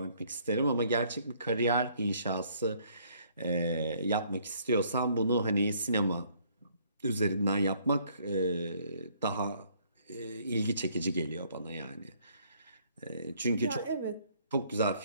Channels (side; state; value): both; inverted; correlation -0.64